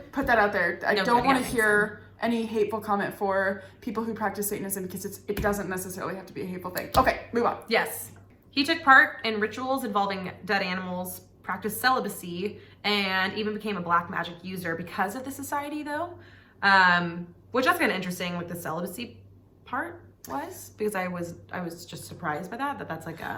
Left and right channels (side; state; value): both; identical; correlation 1.00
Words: put that out there. I No, don't good, want yeah, to hear any hateful comment for people who practice Satanism because it doesn't necessarily have to be a hateful thing. Okay, move on. Yes. He took part in rituals involving dead animals, practiced celibacy, and even became a black magic user because of the society, though. Which that's kind of interesting, like the celibacy part was, because I was just surprised by that's like